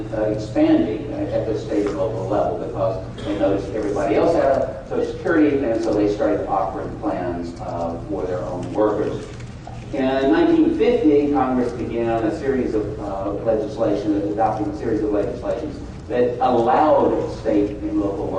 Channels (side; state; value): both; identical; correlation 1.00